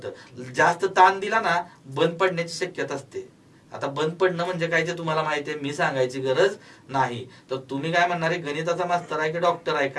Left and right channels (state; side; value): identical; both; correlation 1.00